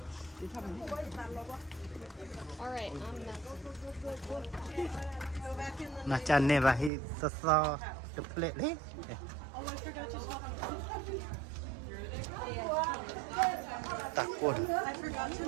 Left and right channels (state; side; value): drops out; left; at 6.9 s